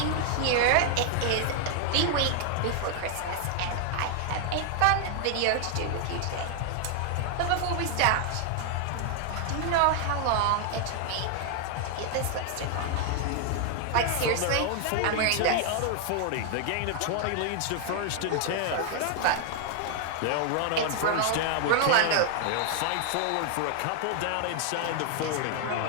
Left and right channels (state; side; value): different; both; correlation 0.00